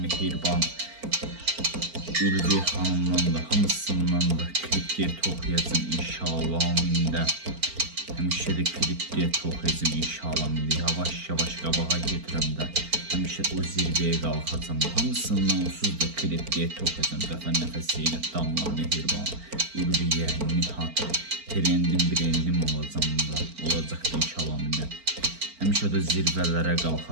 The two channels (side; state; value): left; late; 4.4 ms